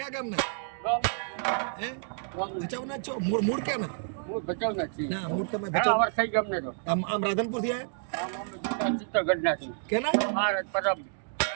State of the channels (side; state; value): left; silent; digital silence